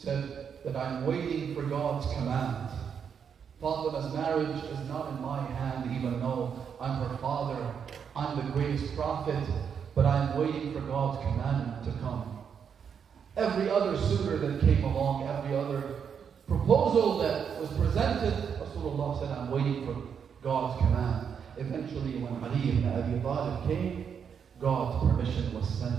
that I'm waiting for God's command. Fatima's marriage is not in my hand, even though I'm her father, I'm the greatest prophet, but I'm waiting for God's commandment to come. Every other suitor that came along, every other proposal that was presented, Rasulullah said, I'm waiting for God's command. Eventually, when Ali ibn Abi Talib came, God's permission was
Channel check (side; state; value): left; quieter; 7.2 dB